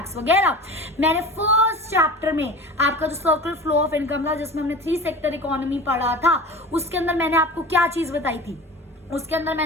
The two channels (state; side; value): normal; both; correlation 0.36